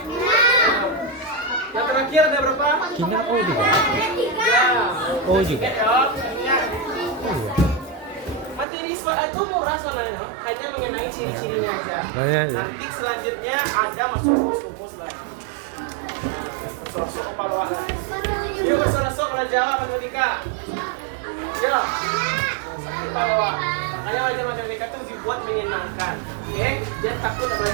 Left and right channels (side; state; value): left; drops out; at 8.7 s